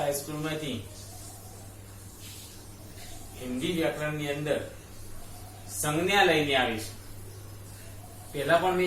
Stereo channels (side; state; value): both; identical; correlation 1.00